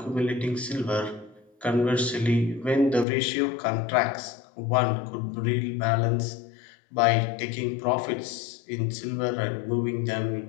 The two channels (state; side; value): drops out; right; at 3.1 s